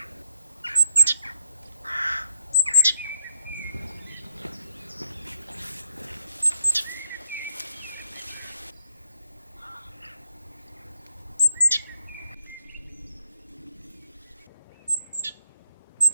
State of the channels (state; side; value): inverted; both; correlation -0.79